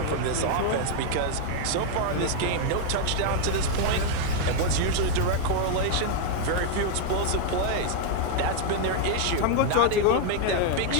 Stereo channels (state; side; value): different; both; correlation 0.00